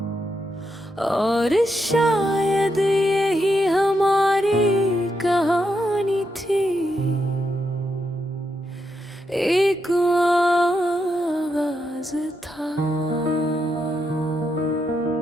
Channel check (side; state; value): both; normal; correlation 0.82